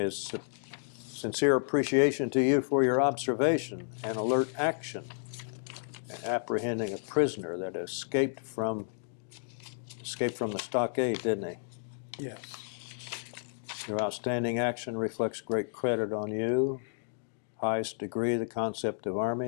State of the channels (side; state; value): right; silent; digital silence